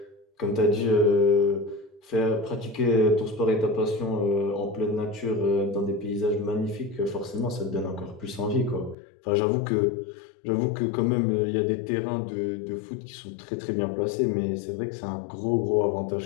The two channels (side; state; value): right; drops out; at 9.0 s